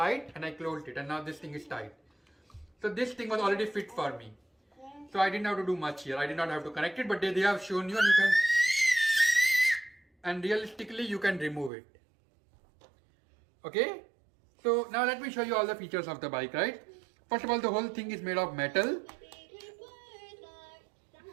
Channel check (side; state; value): left; drops out; at 11.7 s